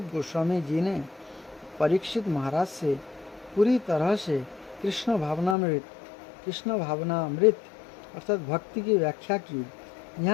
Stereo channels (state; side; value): drops out; right; at 5.6 s